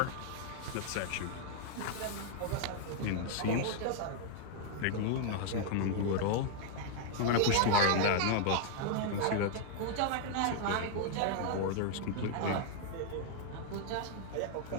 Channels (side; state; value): both; different; correlation 0.00